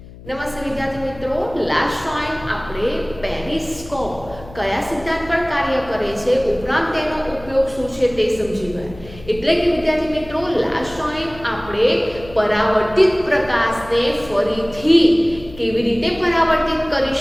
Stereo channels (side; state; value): left; noise; hum, 18 dB below the sound